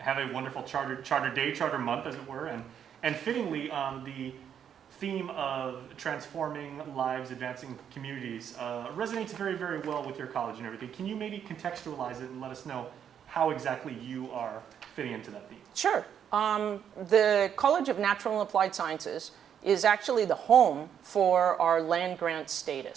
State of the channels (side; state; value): left; quieter; 8.6 dB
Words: a wonderful Charter Day, Charter Month, as it were, and fittingly, the theme of transforming lives, advancing communities resonates very, very well with your college and everything. Can you maybe contextualize it and let us know how exactly you are fitting into that theme? Sure. The College of Natural and Applied Sciences is actually the home for our land grant